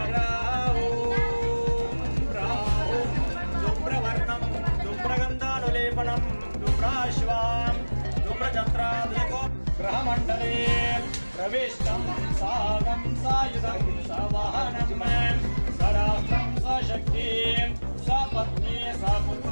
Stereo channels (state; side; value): inverted; both; correlation -1.00